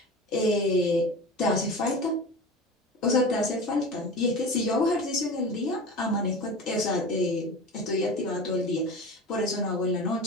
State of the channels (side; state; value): both; normal; correlation 0.32